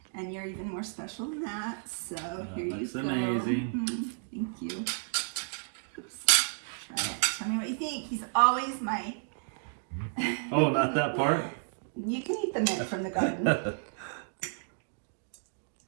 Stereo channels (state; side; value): silent; left; digital silence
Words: and you're even more special than that. So here you go. That's amazing. Thank you. Try it. Tell me what you think. He's always my... Oh, not that part? You can eat the mint from the garden.